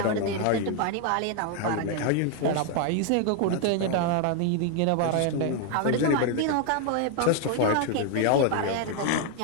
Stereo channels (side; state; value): both; different; correlation 0.01